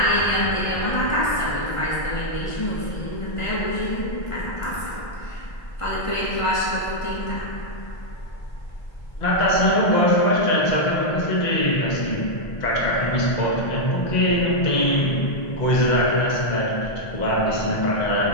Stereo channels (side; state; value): right; late; 1.5 ms